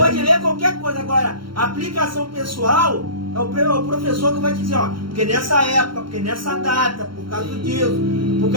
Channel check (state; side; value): late; left; 0.73 ms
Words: ler qualquer coisa. Agora, a aplicação pessoal é o professor que vai dizer, porque nessa época, porque nessa data, por causa disso, por